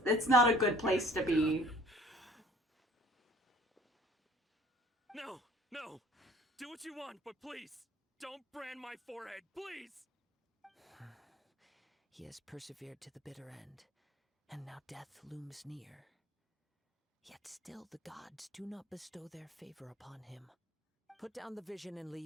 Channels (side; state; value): both; normal; correlation 0.53